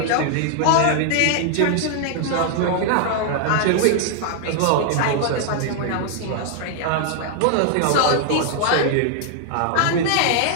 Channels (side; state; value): both; different; correlation 0.00